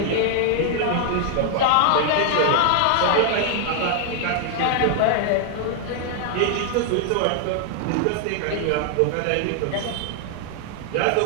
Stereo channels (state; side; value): different; both; correlation 0.00